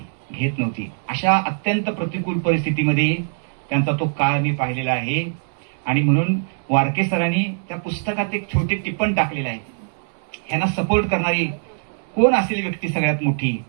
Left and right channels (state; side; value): silent; left; 64 dB below the other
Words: घेत नव्हती. अशा अत्यंत प्रतिकूल परिस्थितीमध्ये त्यांचा तो काळ मी पाहिलेला आहे. आणि म्हणून वारके सरांनी त्या पुस्तकात एक छोटे टिप्पण टाकलेलं आहे. ह्यांना सपोर्ट करणारी कोण असेल व्यक्ती सगळ्यात मोठी,